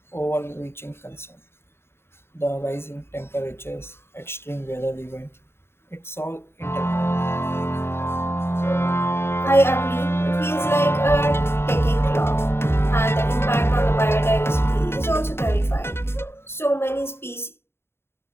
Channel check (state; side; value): late; right; 0.12 ms